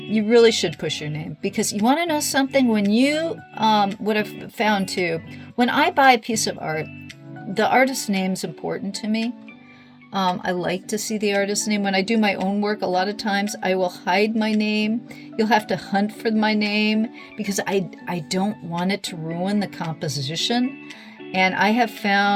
really should push your name, because you want to know something. When you, what I've found too, when I buy a piece of art, the artist's name's important to me. I like to see the artist's name. When I do my own work, a lot of times I will hide my name. You'll have to hunt for my name, because I don't want it to ruin the composition. And I have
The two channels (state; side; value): identical; both; correlation 1.00